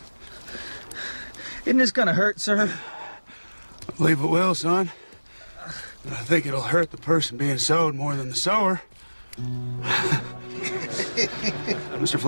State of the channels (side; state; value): both; inverted; correlation -1.00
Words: Isn't this gonna hurt, sir? I believe it will, son. But I think it'll hurt the person being sewed more than the sewer. Mr.